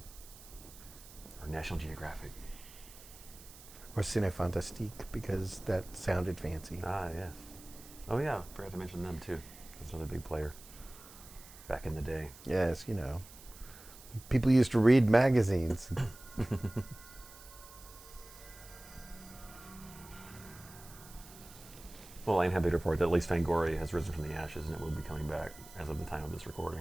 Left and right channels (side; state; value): right; noise; hiss, 19 dB below the sound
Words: Or National Geographic. or Cine Fantastique because that sounded fancy. Ah, yeah. Oh yeah, forgot to mention them too. That's another big player back in the day. Yes, people used to read magazines. Well, I'm happy to report that at least Fangoria has risen from the ashes and it will be coming back as of the time of this recording,